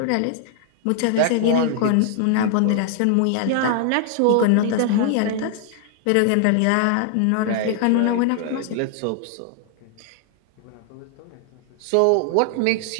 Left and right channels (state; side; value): different; both; correlation 0.00